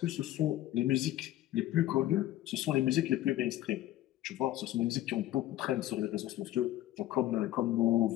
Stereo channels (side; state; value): right; quieter; 14.3 dB